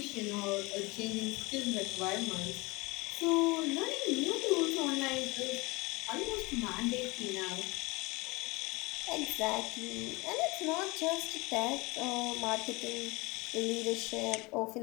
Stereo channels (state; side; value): quieter; right; 24.2 dB